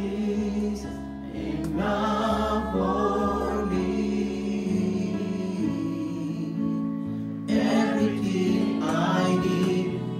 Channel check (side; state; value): both; identical; correlation 1.00